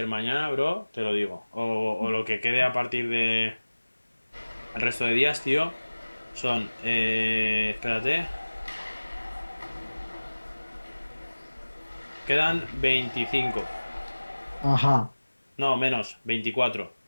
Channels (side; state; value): both; inverted; correlation -1.00